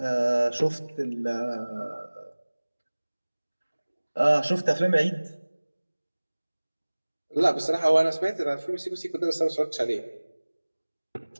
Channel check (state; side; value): inverted; both; correlation -1.00